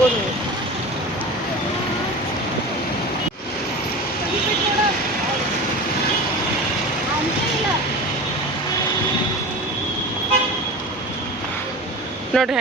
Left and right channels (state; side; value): normal; both; correlation 0.32